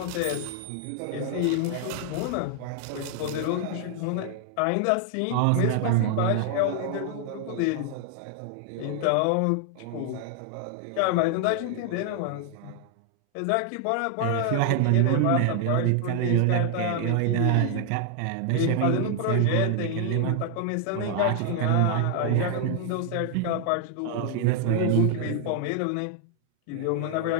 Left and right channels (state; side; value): different; both; correlation 0.00